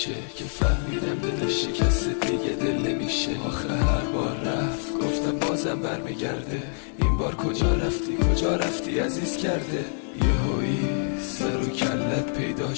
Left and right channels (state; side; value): silent; right; 61 dB below the other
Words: که فهمیدم دل شکست دیگه دل نمیشه. آخه هر بار رفت گفتم بازم برمیگرده. این بار کجا رفتی عزیز کرده. یهویی سر و کلت پیدا